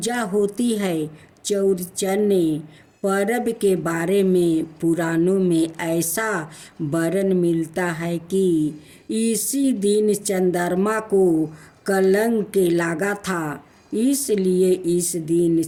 होती है। चौरचन्ना पर्व के बारे में पुराणों में ऐसा वर्णन मिलता है कि इसी दिन चंद्रमा को कलंक लगा था, इसलिए इस दिन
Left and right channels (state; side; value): identical; both; correlation 1.00